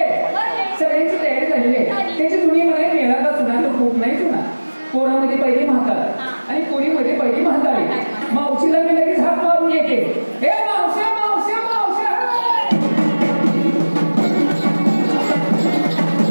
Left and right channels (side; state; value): both; inverted; correlation -1.00